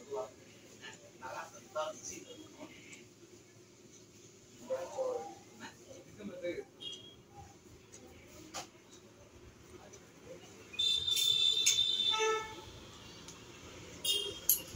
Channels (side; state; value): both; identical; correlation 1.00